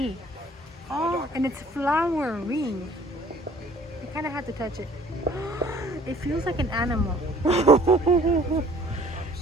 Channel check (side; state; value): both; normal; correlation 0.54